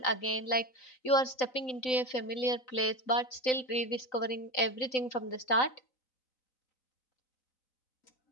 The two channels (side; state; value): right; late; 3.9 ms